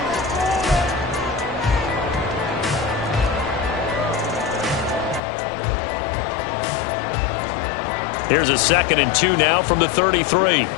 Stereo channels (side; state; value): right; drops out; at 5.2 s